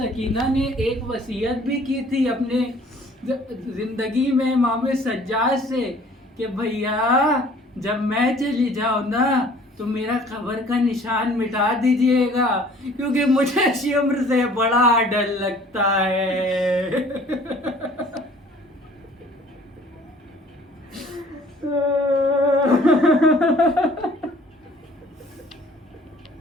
نے ایک وصیت بھی کی تھی اپنے زندگی میں امام سجاد سے کہ بھیا جب میں چلی جاؤں نا تو میرا قبر کا نشان مٹا دیجئے گا، کیونکہ مجھے شمر سے بڑا ڈر لگتا ہے۔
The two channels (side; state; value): both; normal; correlation 0.53